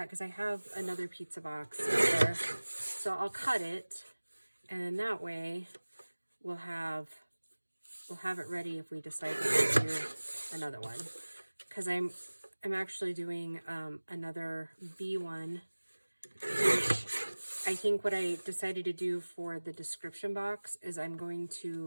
because I have another pizza box there. So I'll cut it, and then that way we'll have it ready if we decide to do another one. Because I'm actually doing another B one, which I think what I decided to do for the description box is I'm going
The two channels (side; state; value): both; inverted; correlation -1.00